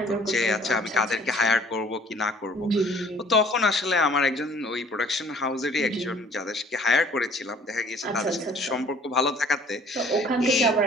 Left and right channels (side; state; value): both; normal; correlation 0.55